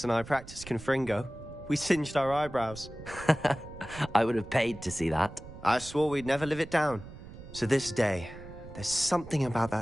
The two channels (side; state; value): right; noise; rumble, 15 dB below the sound